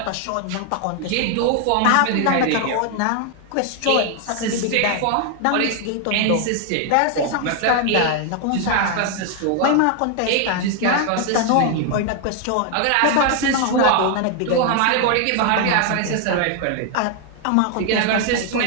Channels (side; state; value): both; different; correlation 0.00